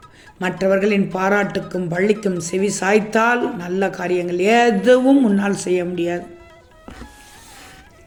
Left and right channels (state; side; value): identical; both; correlation 1.00